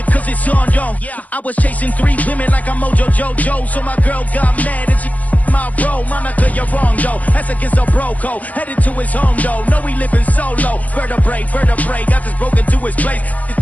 cause it's on, yo. I was chasing 3 women like I'm Mojo Jojo, so my girl got mad and she my bro. Monica, you're wrong, though. That's against a bro code. Headed to his home, though. No, he living solo. Vertebrae, got this broken to his place. It's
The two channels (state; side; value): late; right; 0.075 ms